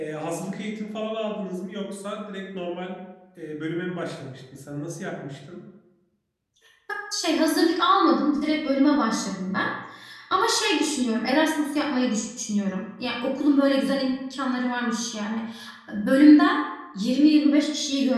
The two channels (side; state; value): both; identical; correlation 1.00